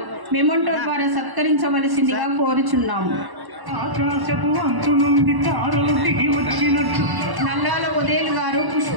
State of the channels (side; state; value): left; late; 1.0 ms